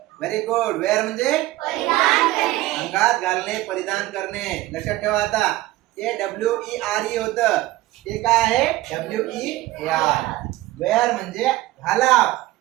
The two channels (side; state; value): left; quieter; 17.2 dB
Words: Very good. वेअर म्हणजे अंगात घालणे, परिधान करणे. लक्षात ठेवा आता. ते WERE होत. ते काय आहे? WEAR. वेअर म्हणजे घाला,